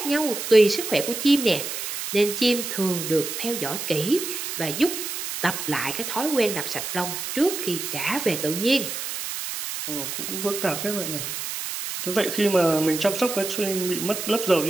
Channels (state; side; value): noise; right; hiss, 5 dB below the sound